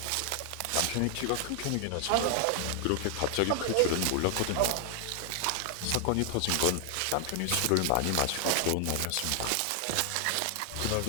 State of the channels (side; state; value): both; different; correlation 0.00